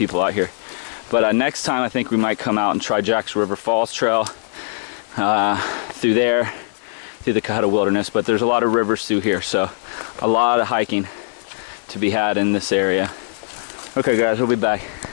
out here. But next time I think we might come out and try Jack's River Falls Trail through there, through the Cohutta Wilderness. But there's a lot of rivers through here, so a lot of hiking to be had in this area. Okay guys, we'll be back.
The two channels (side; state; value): right; silent; digital silence